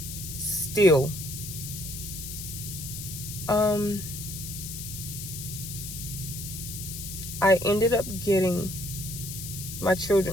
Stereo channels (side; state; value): left; noise; hiss, 8 dB below the sound